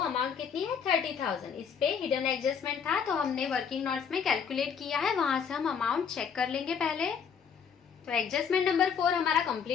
कितनी है? 30,000। इस पे हिडन एडजस्टमेंट था, तो हमने वर्किंग नोट्स में कैलकुलेट किया है, वहां से हम अमाउंट चेक कर लेंगे पहले। तो एडजस्टमेंट नंबर 4 हमारा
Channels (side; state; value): right; quieter; 6.9 dB